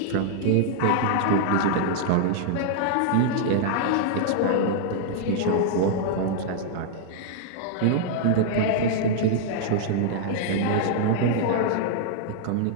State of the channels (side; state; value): both; different; correlation -0.01